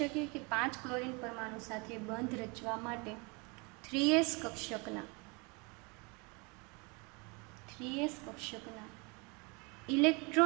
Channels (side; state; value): left; quieter; 30.0 dB